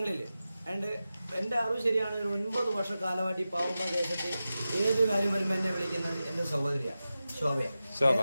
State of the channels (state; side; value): inverted; both; correlation -0.93